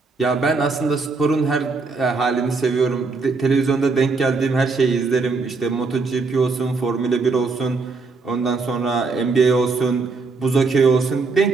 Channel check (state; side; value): quieter; left; 4.2 dB